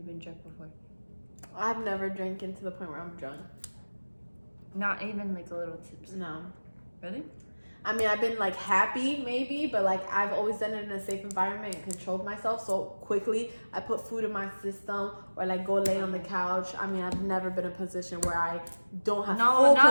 been drunk before? I've never drinking to the point where I'm drunk. Not even like a little tips. No. Really? I mean, I've been like happy maybe, but like I've always done it in a safe environment and controlled myself so quickly. I put food in my system or like go lay on the couch. I mean, I've never been in a position where I don't have full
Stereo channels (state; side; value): inverted; both; correlation -1.00